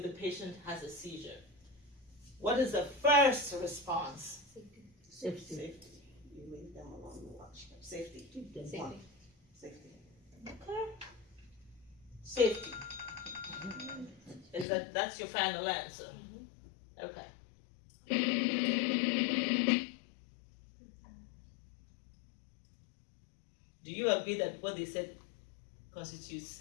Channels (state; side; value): drops out; right; at 14.7 s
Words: the patient has a seizure? What is the first response? Safety. You leave them alone and watch. Safety. Safety. Safety. Okay. Safety. Is that's your final answer? Okay. Do you agree that what they said constitutes